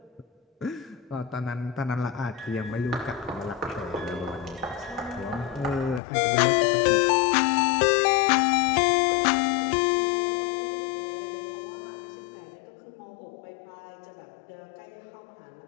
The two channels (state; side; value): drops out; right; at 6.0 s